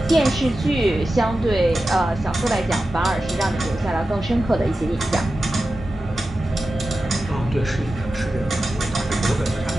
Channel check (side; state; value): both; normal; correlation 0.92